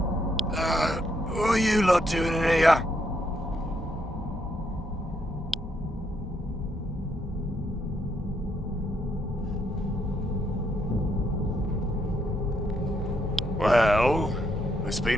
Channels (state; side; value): normal; both; correlation 0.75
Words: What are you lot doing in here? Well, it's